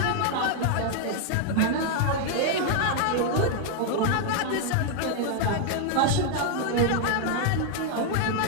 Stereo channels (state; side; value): different; both; correlation 0.00